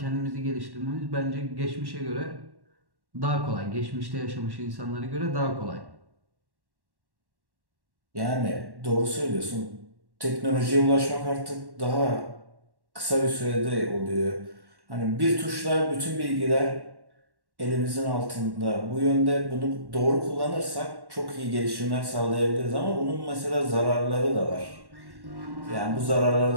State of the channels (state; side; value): late; left; 1.1 ms